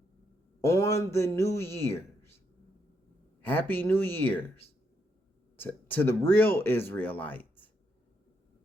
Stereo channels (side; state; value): both; normal; correlation 0.78